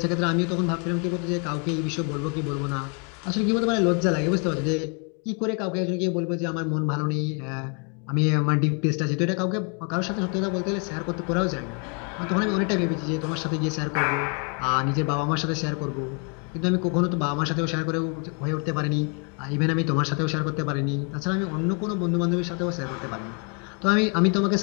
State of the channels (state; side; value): quieter; right; 37.2 dB